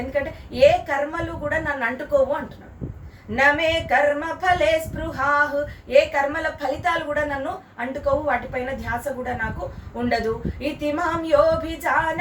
ఎందుకంటే ఏ కర్మలు కూడా నన్ను అంటుకోవు అంటున్నాడు. నమే కర్మ ఫలే స్పృహాః, ఏ కర్మల ఫలితాలు కూడా నన్ను అంటుకోవు, వాటిపైన ధ్యాస కూడా నాకు ఉండదు. ఇతి మాం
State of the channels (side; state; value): both; identical; correlation 1.00